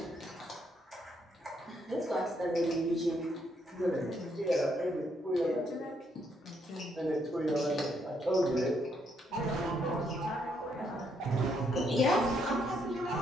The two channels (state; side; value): normal; both; correlation 0.74